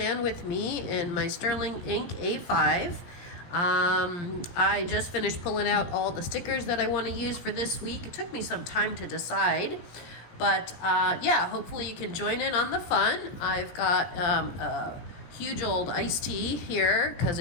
with me in my Sterling Ink A5. I just finished pulling out all the stickers that I want to use for this week. It took me some time to decide, but yeah, hopefully you can join in on the fun. I've got a huge old iced tea here because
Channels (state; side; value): late; right; 17 ms